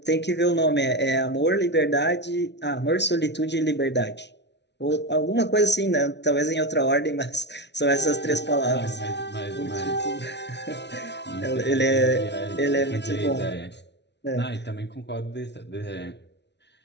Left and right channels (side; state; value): right; late; 0.50 ms